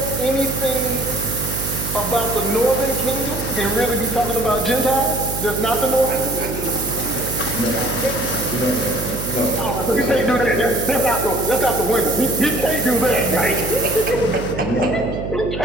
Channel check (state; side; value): noise; right; hum, 7 dB below the sound